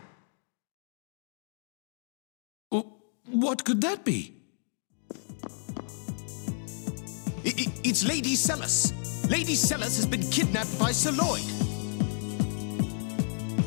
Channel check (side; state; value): right; silent; digital silence